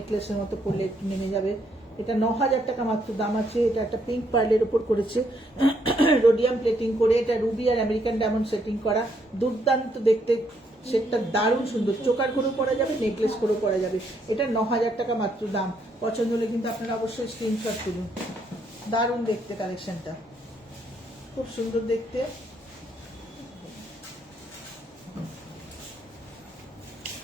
মতো পড়লে একটু নেমে যাবে। এটা 9,000 টাকা মাত্র দাম আছে। এটা একটা পিঙ্ক পার্লের উপর করেছে, রোডিয়াম প্লেটিং করে, এটা রুবি আর আমেরিকান ডায়মন্ড সেটিং করা, দুর্দান্ত দেখতে। সেটটা দারুণ সুন্দর, চোকার করেও পরা যাবে, নেকলেস করেও পরা যাবে। এটা 9,000 টাকা মাত্র দাম। পছন্দ হলে কিন্তু আপনারা অবশ্যই স্ক্রিনশট তুলুন। দারুণ দেখতে কালেকশনটা, খুব সুন্দর দেখতে।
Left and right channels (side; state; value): both; normal; correlation 0.73